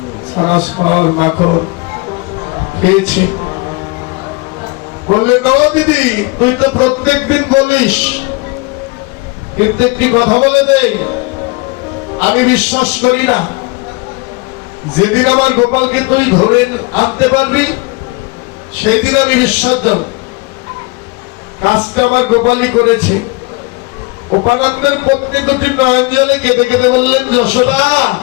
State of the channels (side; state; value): right; quieter; 26.3 dB